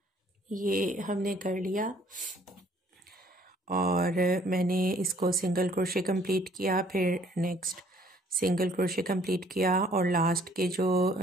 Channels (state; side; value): normal; both; correlation 0.60